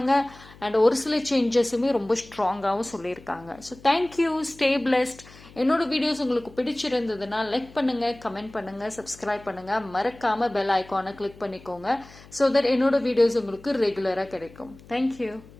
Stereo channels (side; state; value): left; noise; hum, 22 dB below the sound